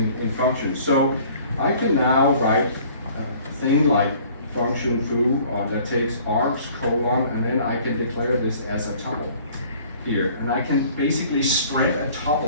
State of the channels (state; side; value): inverted; both; correlation -0.53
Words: functions. So I can now write a thing like function foo that takes args, colon, and then I can declare this as a tuple here. And I can basically spread a